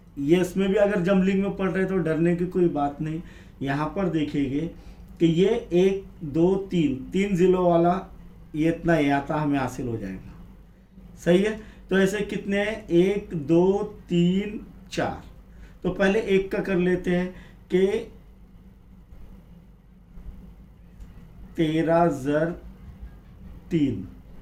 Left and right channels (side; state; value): both; identical; correlation 1.00